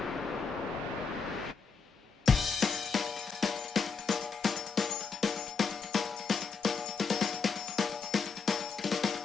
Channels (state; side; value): quieter; right; 5.3 dB